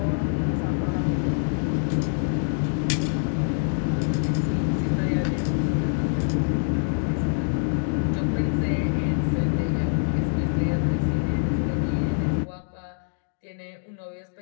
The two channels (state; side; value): silent; right; digital silence